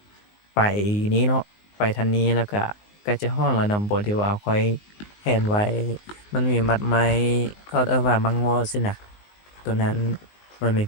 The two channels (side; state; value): right; late; 19 ms